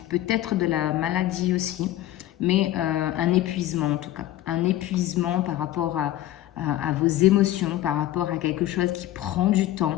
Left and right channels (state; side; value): quieter; right; 14.1 dB